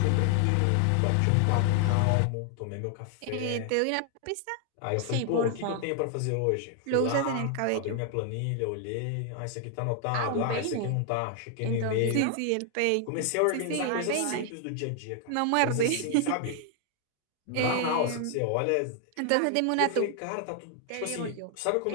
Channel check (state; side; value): different; both; correlation 0.00